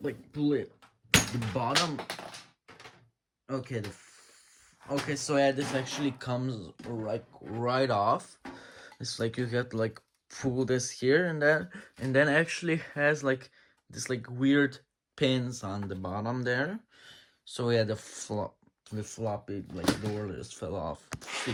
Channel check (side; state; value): both; identical; correlation 1.00